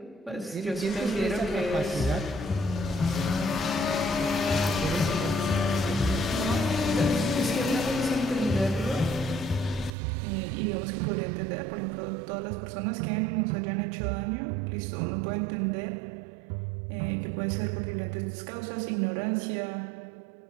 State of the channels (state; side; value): drops out; left; at 9.9 s